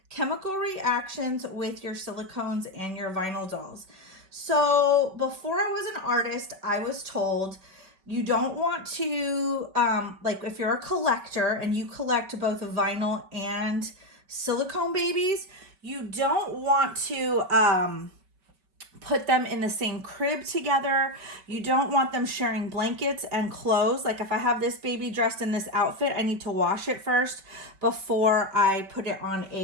chemical reactions with your silicones and your vinyl dolls. So before I was an artist, I was told you don't want to, like, if you're a collector and you collect both vinyl and silicone babies, you don't want to put them in the same crib together. You don't want them sharing blankets and clothes. Like, if I have this baby dressed in this outfit, I need to wash it first before I put it on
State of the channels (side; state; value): left; late; 5.2 ms